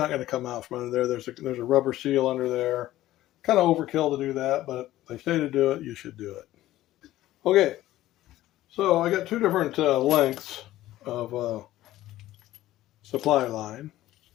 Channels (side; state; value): right; quieter; 15.0 dB